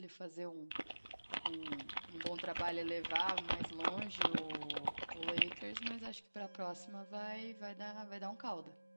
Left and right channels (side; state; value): both; inverted; correlation -1.00